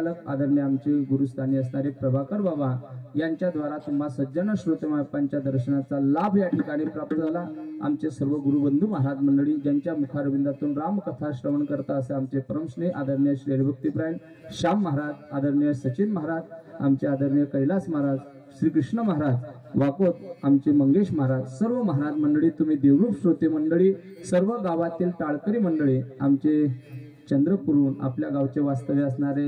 आदरणीय आमचे गुरुस्थानी असणारे प्रभाकर बाबा यांच्याद्वारा तुम्हा सज्जन श्रोतेमापांच्या दर्शनाचा लाभ या ठिकाणी प्राप्त झाला. आमचे सर्व गुरुबंधू महाराज मंडळी ज्यांच्या मुखारविंदातून रामकथा श्रवण करता असे आमचे परमस्नेह आदरणीय श्री हरिभक्तीपरायण श्याम महाराज, आदरणीय सचिन महाराज, आमचे आदरणीय कैलास महाराज, श्रीकृष्ण महाराज वाकोत, आमचे मंगेश महाराज, सर्व महाराज मंडळी, तुम्ही देवरूप श्रोते मंडळी, सर्व गावातील टाळकरी मंडळी, आमचे चंद्रपूरहून आपल्या गावचे वास्तव्य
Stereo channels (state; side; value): identical; both; correlation 1.00